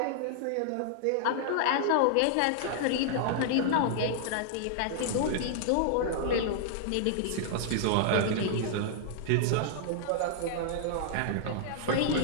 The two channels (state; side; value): different; both; correlation -0.01